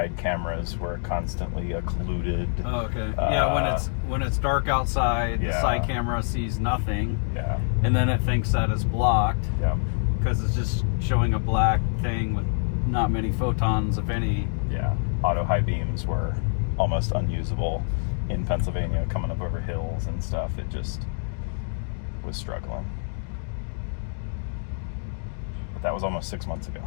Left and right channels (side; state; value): right; silent; digital silence